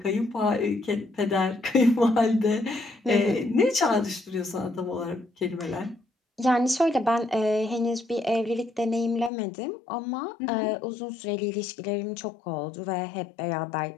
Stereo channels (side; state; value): right; drops out; at 9.3 s